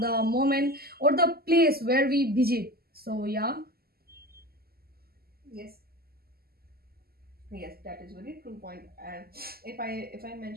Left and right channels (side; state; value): left; late; 0.45 ms